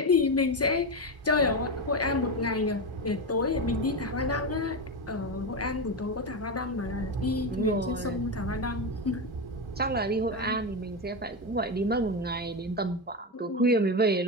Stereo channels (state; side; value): normal; both; correlation 0.14